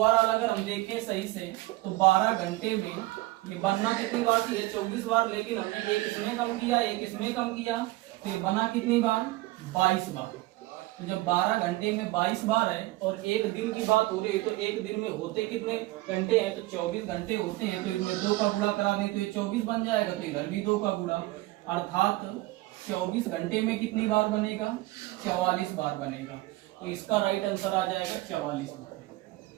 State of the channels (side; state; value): left; quieter; 19.3 dB